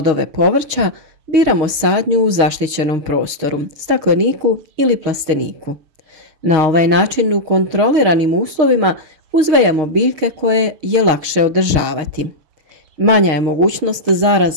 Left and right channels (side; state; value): left; late; 6.4 ms